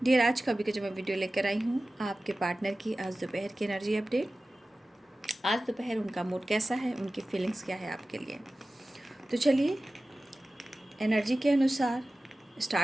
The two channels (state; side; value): normal; both; correlation 0.96